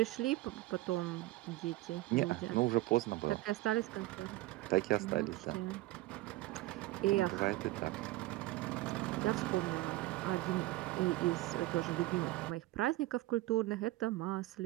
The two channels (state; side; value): quieter; left; 17.8 dB